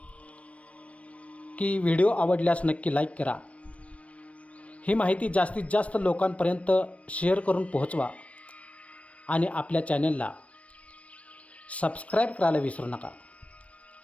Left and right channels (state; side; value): late; right; 0.064 ms